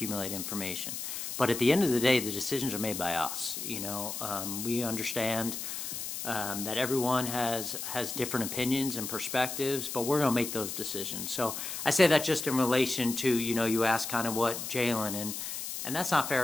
information. But at the end of the day, the decisions are made by us. You know, we understand that everyone has different opinions and perspectives, but we're going to make those decisions. So I say that just in relation to, you know, you asked kind of what Jalen, and that's not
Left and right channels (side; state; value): left; noise; hiss, 6 dB below the sound